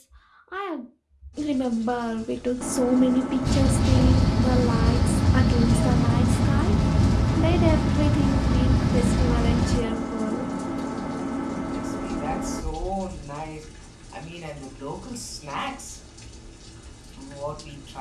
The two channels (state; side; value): identical; both; correlation 1.00